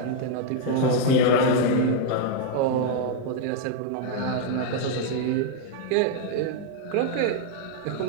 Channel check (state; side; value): different; both; correlation 0.00